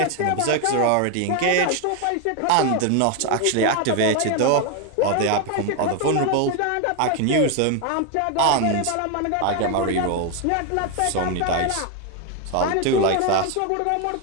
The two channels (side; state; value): both; different; correlation 0.01